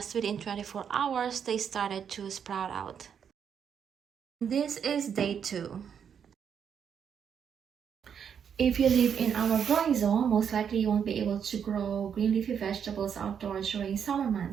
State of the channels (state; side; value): quieter; left; 7.7 dB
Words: within 24 hours, they started to sprout out. This is day 2. If you live in our growing zone, most likely you won't be able to grow green leafy vegetables outdoors during summer